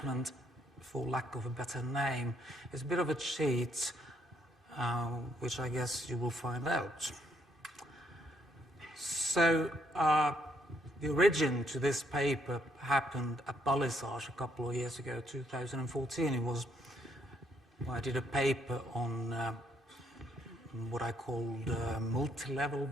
for lack of a better name. It's a bit of a cheat, which I guess you will find out. So, the origin to this paper happened at Balisage a couple of years ago, 2014. It was, I did a paper on what I called multi-level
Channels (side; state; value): both; normal; correlation 0.71